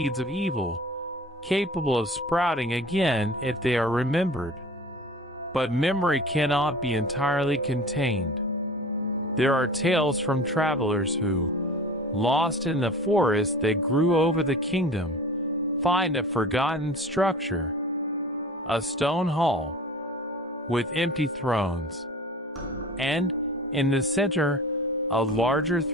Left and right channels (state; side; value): normal; both; correlation 0.40